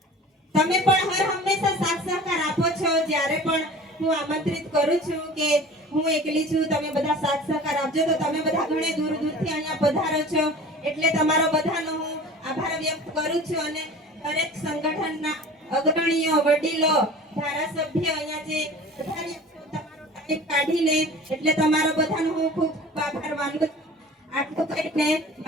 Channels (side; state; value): both; normal; correlation 0.41